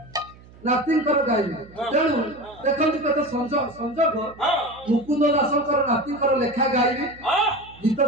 गाइबे तेणु देखंतु कते संजोग मुकुंद दासंकर नातिंकर लेखा गाइबे गीत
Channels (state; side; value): noise; right; hum, 23 dB below the sound